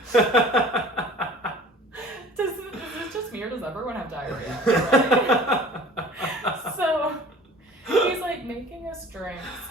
Is this just me, or does everyone have diarrhea? Right? So he's like making us drinks,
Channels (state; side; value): normal; both; correlation 0.45